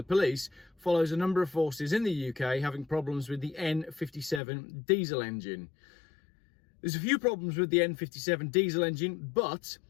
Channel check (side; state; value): right; drops out; at 4.4 s